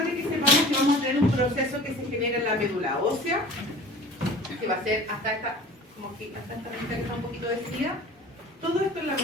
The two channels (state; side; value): normal; both; correlation 0.43